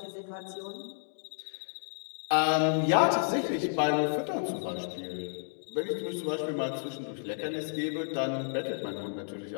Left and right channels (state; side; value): silent; right; digital silence